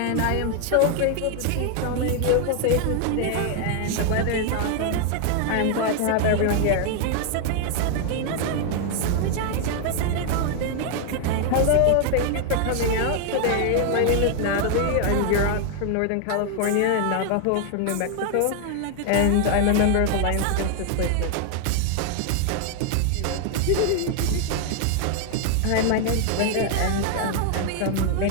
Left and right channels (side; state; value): both; different; correlation 0.00